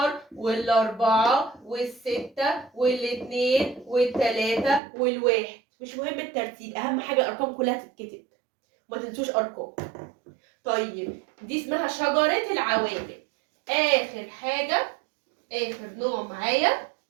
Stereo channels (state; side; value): drops out; left; at 4.8 s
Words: وال4 وال6 وال2 وال3 وال1. مش مهم الترتيب، اهم حاجه الارقام كلها تتكتب، ما تنسوش ارقام. طيب دي اسمها شجره العوامل. اخر حاجه، اخر نوع معايا